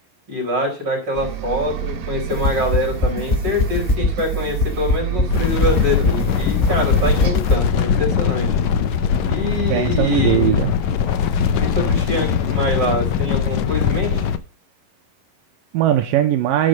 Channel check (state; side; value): late; left; 11 ms